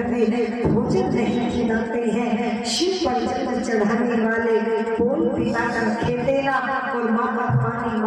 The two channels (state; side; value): identical; both; correlation 1.00